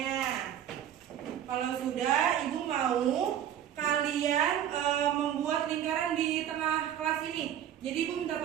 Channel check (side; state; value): left; quieter; 10.3 dB